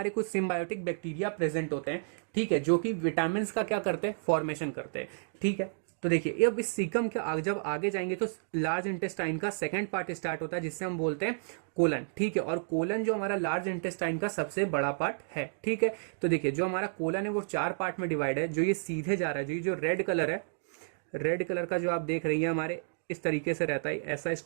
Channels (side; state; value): left; silent; digital silence